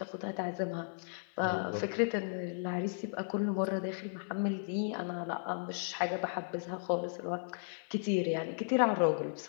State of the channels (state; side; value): silent; right; 54 dB below the other